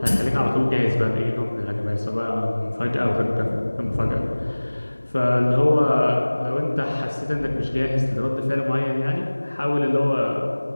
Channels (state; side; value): inverted; both; correlation -1.00